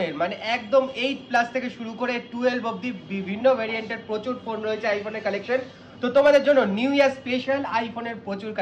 মানে একদম 8 প্লাস থেকে শুরু করে 12 অবধি বিভিন্ন ভেরিয়েন্টের প্রচুর ফোন রয়েছে আইফোনের কালেকশন। তো তোমাদের জন্য নিউ ইয়ার স্পেশাল আইফোনের প্রচুর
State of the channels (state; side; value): identical; both; correlation 1.00